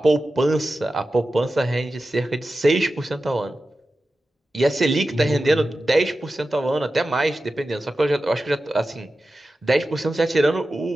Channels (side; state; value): both; normal; correlation 0.93